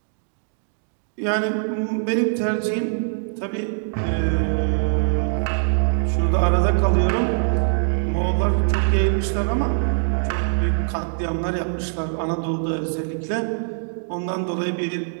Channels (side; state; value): left; silent; digital silence